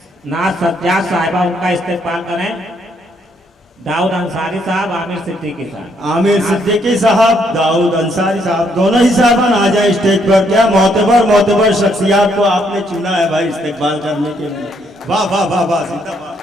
नाज सज्जाद साहिबा, उनका इस्तेमाल करें। दाऊद अंसारी साहब, आमिर सिद्दीकी साहब। आमिर सिद्दीकी साहब, दाऊद अंसारी साहब, दोनों ही साहबान आ जाए स्टेज पर। क्या मोतबर शख्सियात को आपने चुना है भाई इस्तेमाल करने के लिए। वाह वाह वाह वाह, जिंदाबाद।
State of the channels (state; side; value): normal; both; correlation 0.71